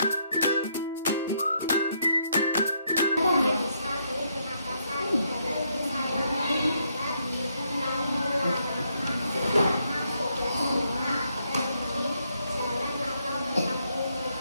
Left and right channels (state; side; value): inverted; both; correlation -0.76